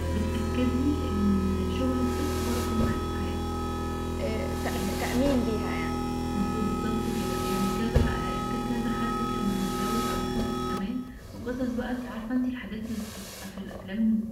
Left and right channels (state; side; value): identical; both; correlation 1.00